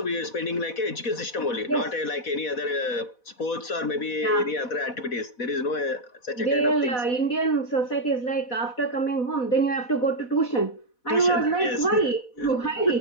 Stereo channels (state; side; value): late; right; 4.1 ms